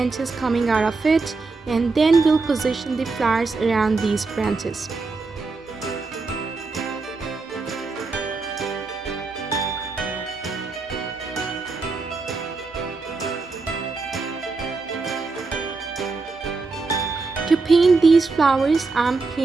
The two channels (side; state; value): left; quieter; 4.0 dB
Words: coming out of it, and then we'll position the flowers around these branches. To paint these flowers, I'm